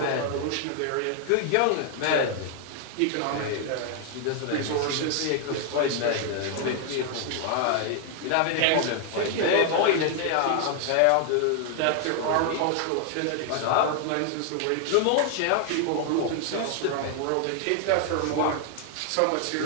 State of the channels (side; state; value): both; different; correlation 0.00